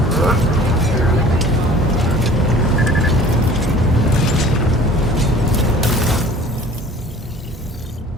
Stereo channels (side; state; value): both; normal; correlation 0.47